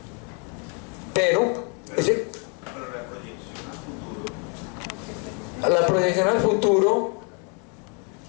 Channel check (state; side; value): quieter; right; 37.2 dB